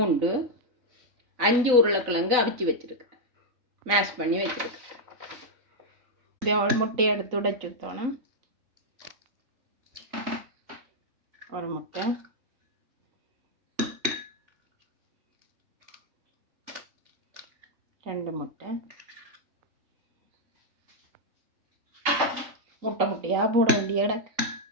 5 உருளைக்கிழங்கு அவிச்சு வச்சுருக்கிறேன், மேஷ் பண்ணி வச்சுருக்கிறேன். ஒரு முட்டையை எடுத்து உடைச்சு ஊற்றணும். ஒரு முட்டை, ரெண்டு முட்டை, முட்டையாக போட வேண்டிய இடம்.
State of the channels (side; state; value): left; late; 4.0 ms